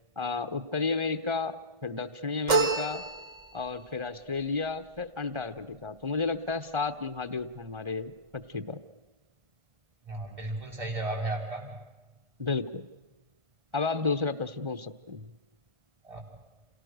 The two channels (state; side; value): late; left; 1.7 ms